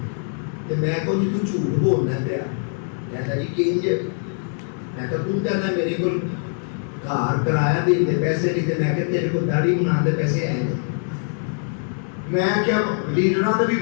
تے میں کو جی تو جھوٹ بولنا پیا کہتا جی کنج میں کہ تو کہنا میرے کو گھر کرایہ دے دے پیسے نہیں تے میں کہ تیرے کو داڑھی بنا دے پیسے آئے ہیں میں کیا لیڈراں دے بھی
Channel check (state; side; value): silent; right; 59 dB below the other